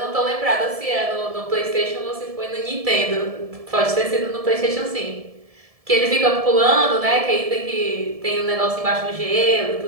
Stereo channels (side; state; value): left; late; 1.7 ms